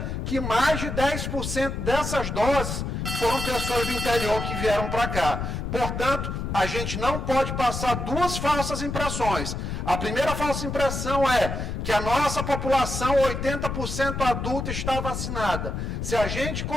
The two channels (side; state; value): left; noise; rumble, 4 dB below the sound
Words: que mais de 10% dessas doses foram pessoas do interior que vieram para cá. Portanto, a gente não pode passar duas falsas impressões. A primeira falsa impressão é que a nossa população, 80% adulta, está vacinada. Se a gente